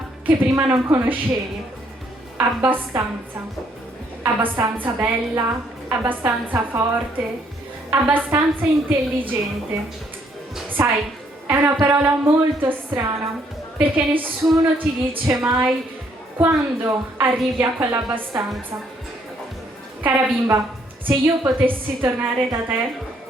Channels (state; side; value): normal; both; correlation 0.68